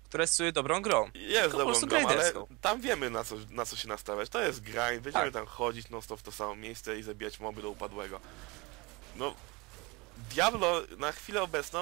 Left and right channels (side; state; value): left; quieter; 25.8 dB